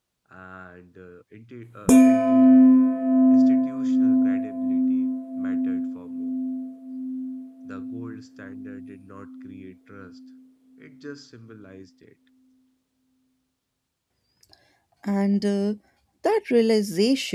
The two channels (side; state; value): both; identical; correlation 1.00